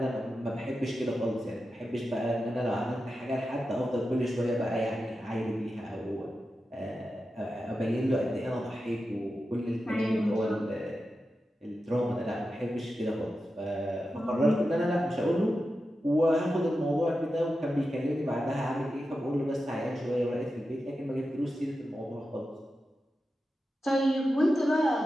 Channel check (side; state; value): both; normal; correlation 0.91